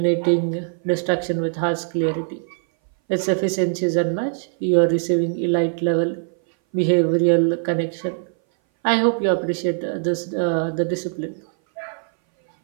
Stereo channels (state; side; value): silent; left; 59 dB below the other